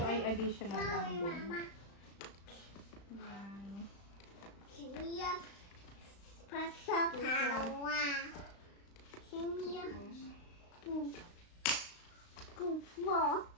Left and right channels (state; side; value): late; right; 35 ms